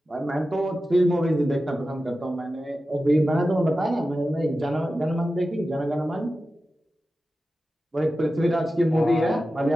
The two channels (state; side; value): normal; both; correlation 0.93